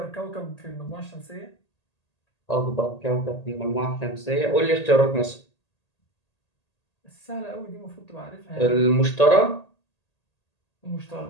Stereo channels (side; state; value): right; late; 1.8 ms